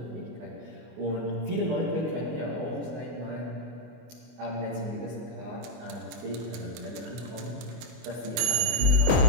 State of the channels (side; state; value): left; late; 24 ms